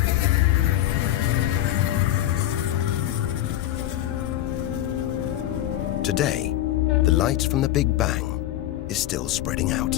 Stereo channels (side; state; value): right; quieter; 13.5 dB